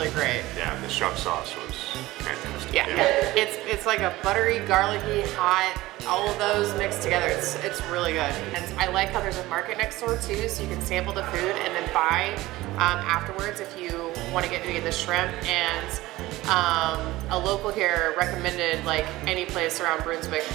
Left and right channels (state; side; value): quieter; left; 18.0 dB